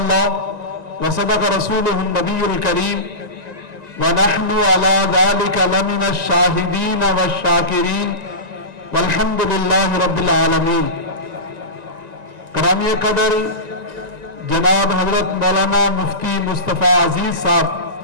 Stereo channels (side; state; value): left; late; 1.9 ms